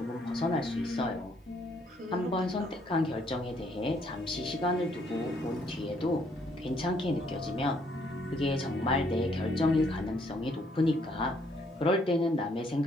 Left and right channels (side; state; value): both; normal; correlation 0.68